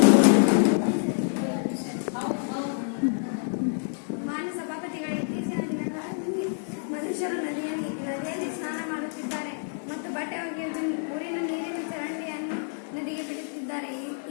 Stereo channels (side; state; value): right; silent; digital silence